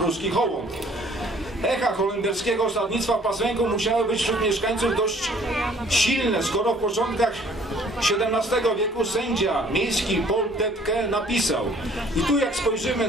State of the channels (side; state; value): both; normal; correlation 0.57